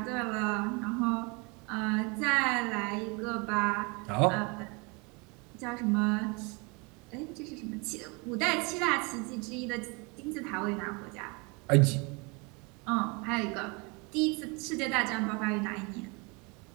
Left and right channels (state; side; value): quieter; left; 29.8 dB